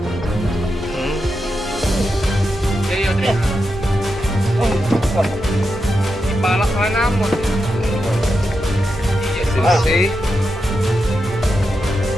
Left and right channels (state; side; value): normal; both; correlation 0.87